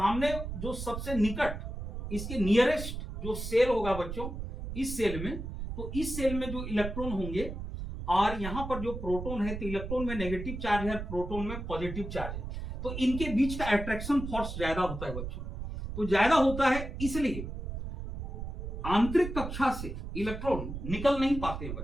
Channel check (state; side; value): noise; right; rumble, 7 dB below the sound